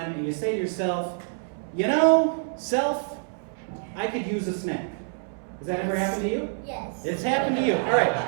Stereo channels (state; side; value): silent; left; 61 dB below the other